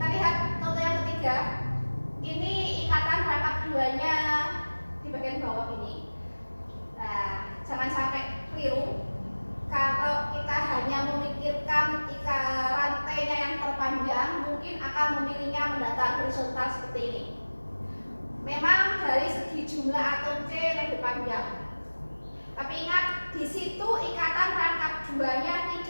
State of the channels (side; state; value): both; inverted; correlation -1.00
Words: lihat contoh yang ketiga. Ini ikatan rangkap 2-nya di bagian bawah ini. Nah, jangan sampai keliru. Kalau kita hanya memikirkan rantainya yang terpanjang, mungkin akan memilihnya mendatar horizontal seperti ini. Memang dari segi jumlah atom C lebih panjang. Tapi ingat, di situ ikatan rangkap 2-nya